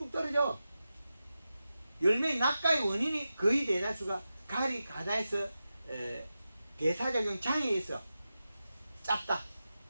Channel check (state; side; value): inverted; both; correlation -0.92